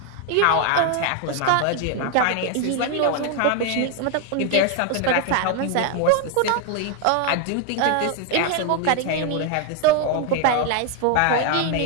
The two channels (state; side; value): different; both; correlation 0.01